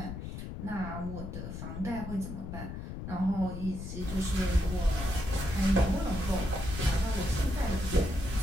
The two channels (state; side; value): noise; left; rumble, 7 dB below the sound